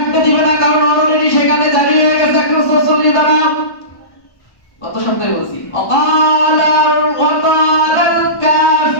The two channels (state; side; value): late; right; 1.1 ms